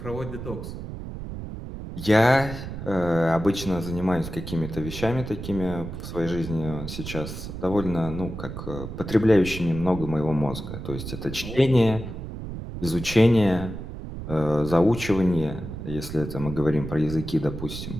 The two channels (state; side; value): noise; right; rumble, 8 dB below the sound